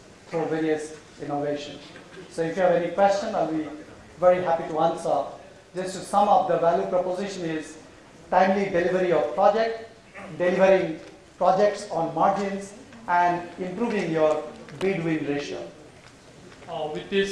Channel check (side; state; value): both; identical; correlation 1.00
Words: through various innovations. So if you have any question, I'll be very happy to answer. Just to sum up, the value proposition is timely delivery of project, delivering projects on margins, and improving your bid-win ratio. With